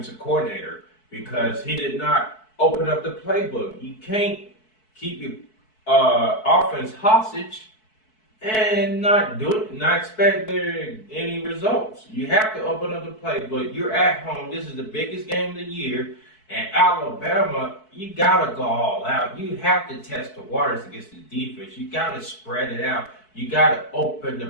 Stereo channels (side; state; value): right; late; 4.6 ms